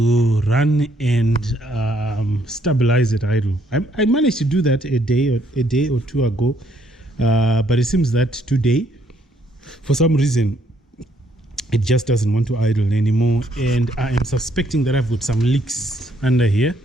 run and stabilize it idle. I managed to do that a day or two ago, but it seems that today for some reason it just doesn't want to idle anymore, and I am suspecting that I've got some leaks under here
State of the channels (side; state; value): both; normal; correlation 0.69